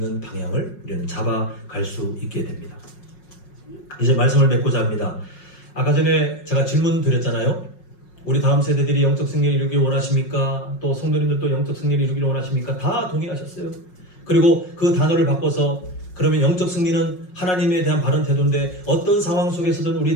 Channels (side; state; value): right; late; 5.5 ms